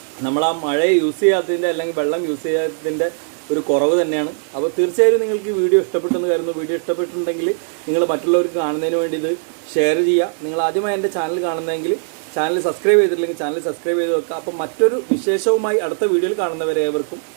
നമ്മൾ ആ മഴയെ യൂസ് ചെയ്യാത്തതിൻ്റെ അല്ലെങ്കിൽ വെള്ളം യൂസ് ചെയ്യാത്തതിൻ്റെ ഒരു കുറവ് തന്നെയാണ്. അപ്പോൾ തീർച്ചയായും നിങ്ങൾക്ക് ഈ വീഡിയോ ഇഷ്ടപ്പെട്ടെന്ന് കരുതുന്നു. വീഡിയോ ഇഷ്ടപ്പെട്ടിട്ടുണ്ടെങ്കിൽ നിങ്ങൾ മറ്റുള്ളവർക്ക് കാണുന്നതിന് വേണ്ടി ഇത് ഷെയർ ചെയ്യുക. നിങ്ങൾ ആദ്യമായി എൻ്റെ ചാനൽ കാണുന്നതെങ്കിൽ ചാനൽ സബ്സ്ക്രൈബ് ചെയ്തിട്ടില്ലെങ്കിൽ ചാനൽ സബ്സ്ക്രൈബ് ചെയ്ത് വെക്കുക. അപ്പോൾ മറ്റൊരു വിശേഷവുമായി അടുത്ത വീഡിയോയിൽ കാണുന്നവരെ ഏവർക്കും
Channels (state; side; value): silent; left; 66 dB below the other